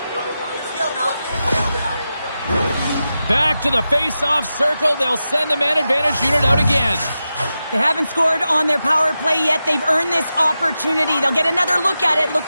Back to the face-off circle. They'll send the man advantage unit out again. They haven't scored on their power play yet. They've earned this opportunity. They'll get another look at it, look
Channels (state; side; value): inverted; both; correlation -0.91